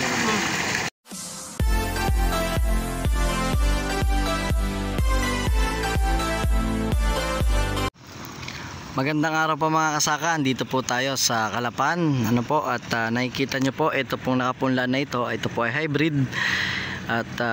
Magandang araw po mga kasaka. Dito po tayo sa Calapan. Ano po, at nakikita nyo po, ito pong nakapunla na ito. Ito po ay hybrid. At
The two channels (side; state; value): both; identical; correlation 1.00